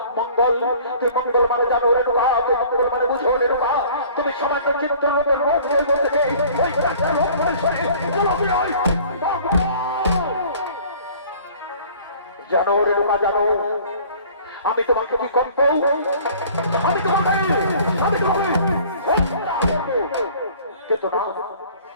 মঙ্গল। তুই মঙ্গল মানে জানো রেণুকা, তুই মঙ্গল মানে বুঝো রেণুকা। তুমি সমাজ চিত্রের রোগ জানো রেণুকা, জানো আমি তোমাকে কি করব? আমি তোমাকে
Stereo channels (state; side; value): inverted; both; correlation -0.50